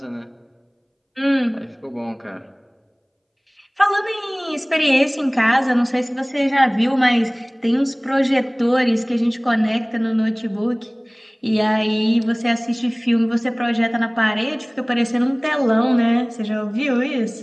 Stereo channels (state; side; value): identical; both; correlation 1.00